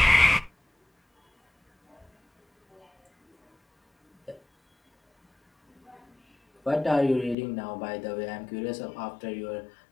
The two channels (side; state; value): right; drops out; at 7.4 s